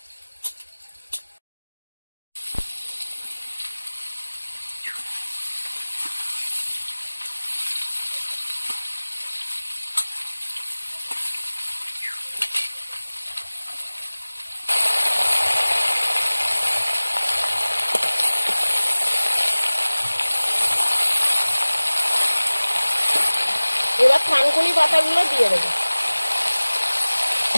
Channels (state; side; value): inverted; both; correlation -1.00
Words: এবার থানকুনি পাতাগুলো দিয়ে দেবো।